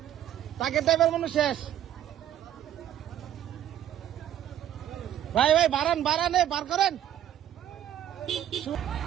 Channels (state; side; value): quieter; left; 11.2 dB